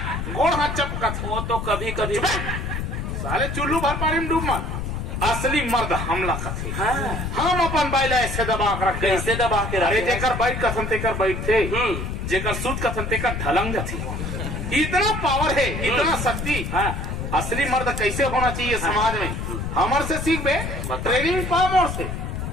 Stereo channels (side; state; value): left; noise; rumble, 4 dB below the sound